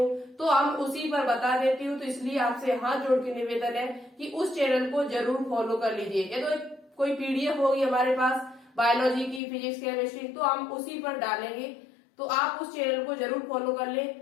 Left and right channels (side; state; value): right; drops out; at 9.4 s